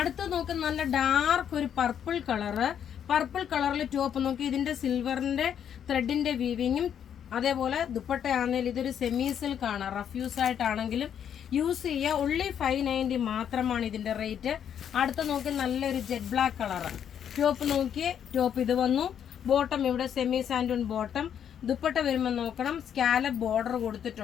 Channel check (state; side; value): quieter; right; 8.9 dB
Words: നോക്കി നല്ല ഡാർക്ക് ഒരു പർപ്പിൾ കളറ്. പർപ്പിൾ കളറിൽ ടോപ്പ് നോക്കി, ഇതിന്റെ സിൽവറിന്റെ ത്രെഡിന്റെ വീവിങ്ങും. അതേപോലെ ദുപ്പട്ടയാണെങ്കിൽ ഇതൊരു സെമി സിൽക്ക് ആണ്. റഫ് യൂസ് ആയിട്ടാണെങ്കിലും യൂസ് ചെയ്യുക. only 590 മാത്രമാണ് ഇതിന്റെ റേറ്റ്. അടുത്ത നോക്കി നല്ലൊരു ജെറ്റ് ബ്ലാക്ക് കളറ്. ടോപ്പ് നോക്കിയേ, ടോപ്പ് ഇത് വന്നു. ബോട്ടം ഇവിടെ സെമി സാൻഡൂൺ ബോട്ടം. ദുപ്പട്ട വരുമ്പോൾ നോക്കണം, സ്കാലപ്പ് ബോർഡർ